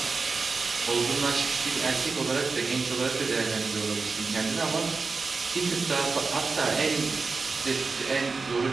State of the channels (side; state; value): left; quieter; 4.4 dB